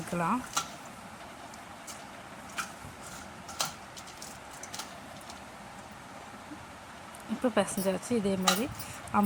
இப்போ பிசைஞ்சாச்சு. இதே மாதிரி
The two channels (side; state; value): both; identical; correlation 1.00